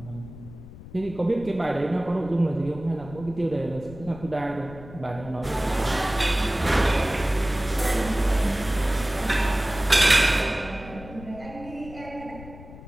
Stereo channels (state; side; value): noise; left; rumble, 16 dB below the sound